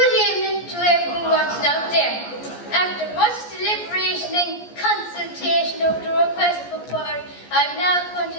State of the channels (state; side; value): late; right; 14 ms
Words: evening to everyone watching out there. After much deliberation and consultation,